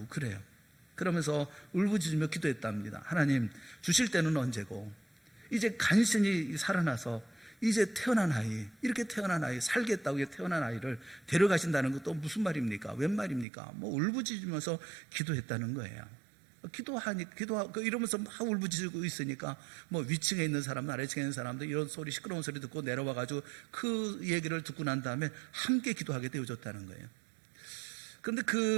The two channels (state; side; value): drops out; left; at 13.5 s